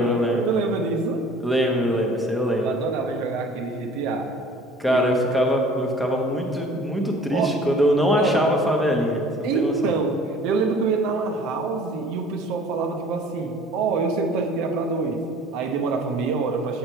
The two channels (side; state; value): both; normal; correlation 0.49